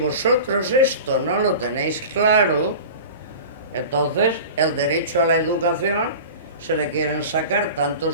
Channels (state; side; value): inverted; both; correlation -0.35